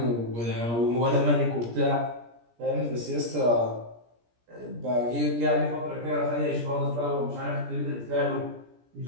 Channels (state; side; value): late; left; 17 ms